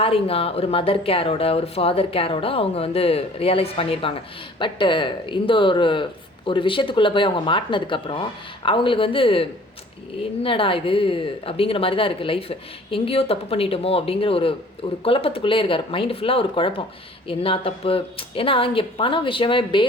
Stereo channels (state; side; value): normal; both; correlation 0.51